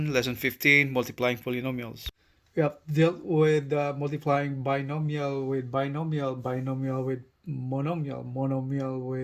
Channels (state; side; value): identical; both; correlation 1.00